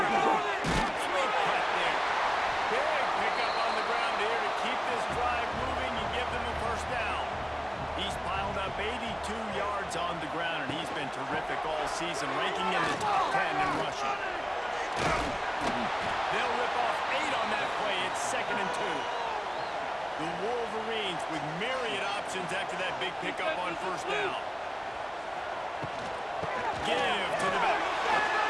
cut there. Big pickup on the ground here to keep this drive moving and give them a first down. He's piled up 82 yards on the ground, and he's been terrific all season, ranking in the top 10 in rushing. They'll rip off 8 on that play. It's 2nd and 2. The Wolverines with myriad options after that big pickup on first down. Give to the back.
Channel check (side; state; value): both; identical; correlation 1.00